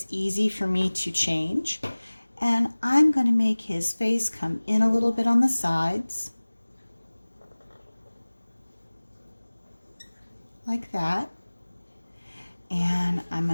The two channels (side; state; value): both; inverted; correlation -1.00